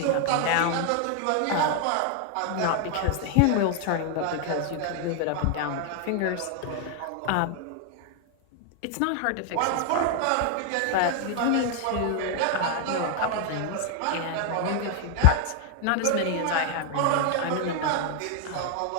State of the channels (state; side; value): different; both; correlation 0.00